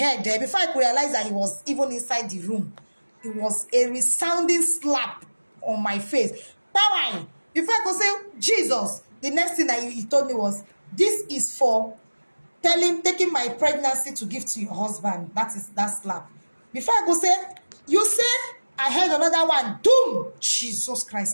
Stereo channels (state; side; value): inverted; both; correlation -1.00